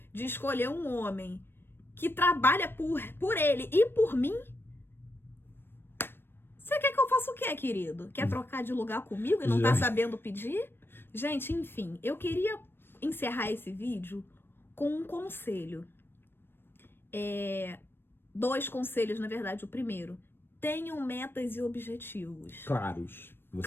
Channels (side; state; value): right; late; 0.10 ms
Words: de escolher um homem que trabalha por ele e por mim, você quer que eu faça o quê, querido? Quer trocar de lugar comigo e não tá sabendo pedir? Gente, enfim, eu queria encerrar esse vídeo com um conselho. 2 conselhos, na verdade. O primeiro: tenham metas e objetivos claros.